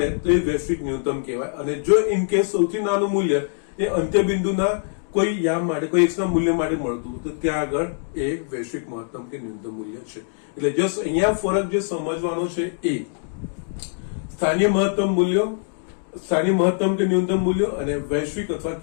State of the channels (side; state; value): right; silent; 63 dB below the other